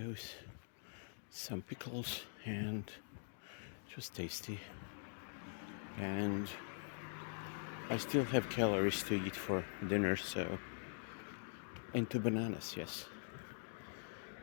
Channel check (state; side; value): silent; right; digital silence